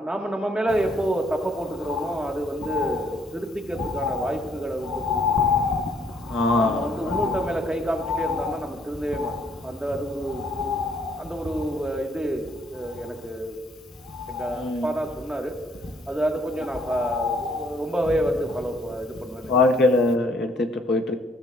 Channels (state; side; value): normal; both; correlation 0.65